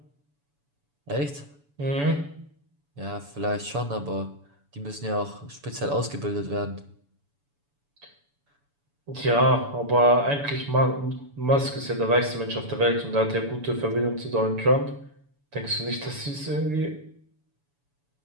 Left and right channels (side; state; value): left; late; 7.0 ms